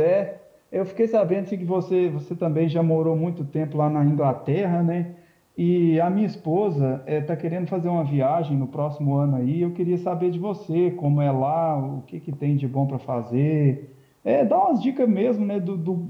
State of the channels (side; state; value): both; identical; correlation 1.00